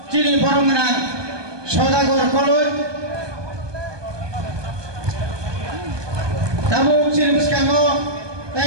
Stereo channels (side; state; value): left; late; 1.2 ms